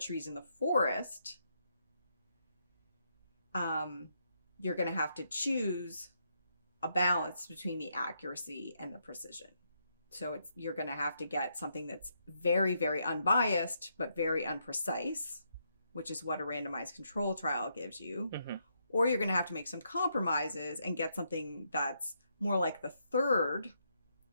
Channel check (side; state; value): both; inverted; correlation -0.77